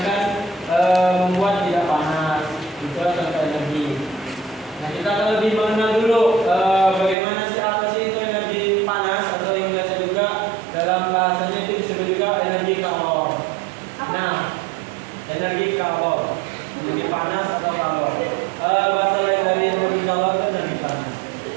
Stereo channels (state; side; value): drops out; left; at 7.2 s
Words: akan membuat tidak panas. Itu contoh energi. Nah, kita akan lebih mengenal dulu bagaimana sih, apa sih itu energi panas, atau yang biasa juga dalam bahasanya itu disebut juga energi kalor. Nah, energi kalor, energi panas atau kalor. Bahasa lain dari energi kalor itu energi panas.